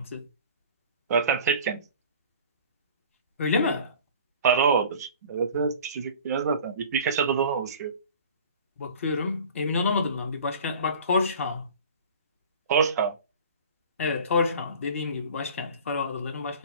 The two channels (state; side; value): inverted; both; correlation -0.43